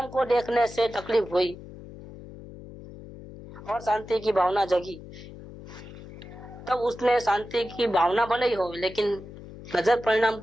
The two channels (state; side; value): noise; left; hum, 15 dB below the sound